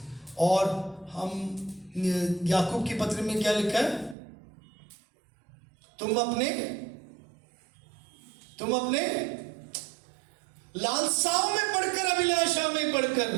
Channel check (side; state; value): left; drops out; at 4.2 s